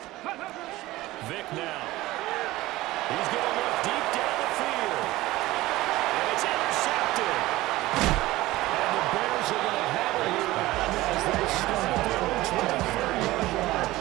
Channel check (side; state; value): left; quieter; 17.9 dB